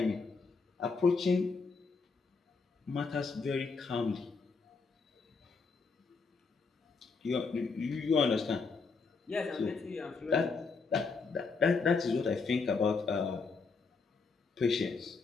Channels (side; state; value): right; quieter; 4.6 dB